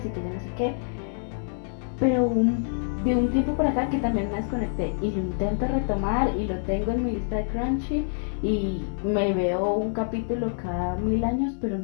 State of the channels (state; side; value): silent; right; digital silence